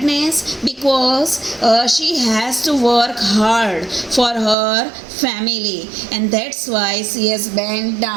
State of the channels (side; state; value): left; drops out; at 4.5 s